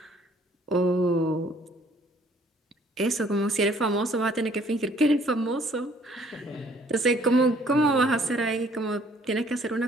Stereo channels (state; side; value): normal; both; correlation 0.60